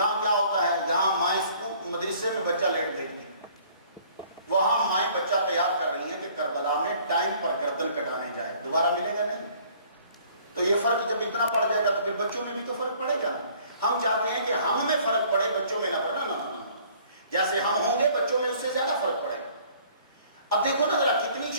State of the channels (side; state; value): both; inverted; correlation -0.56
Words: کیا ہوتا ہے، یہاں مائیں مدرسے میں بچہ لیٹ بھیجتی ہیں، وہاں مائیں بچہ تیار کر رہی ہیں کہ کربلا میں ٹائم پر گردن کٹانے جائے، دوبارہ ملے گا نہیں۔ تو یہ فرق جب اتنا پڑ جائے گا تو پھر بچوں میں بھی تو فرق پڑے گا۔ ہم چاہتے ہیں کہ ہم میں فرق پڑے، بچوں میں نہ پڑے، نہ جیسے ہم ہوں گے بچوں میں اس سے زیادہ فرق پڑے گا۔ اب دیکھو نا ذرا کتنی